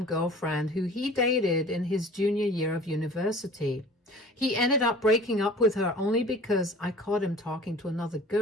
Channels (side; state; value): both; normal; correlation 0.46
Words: girlfriend who he dated in his junior year of university. He ended up breaking up with her only because I caught him talking to another